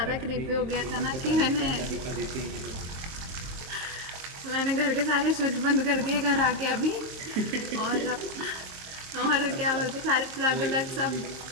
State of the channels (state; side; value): late; left; 23 ms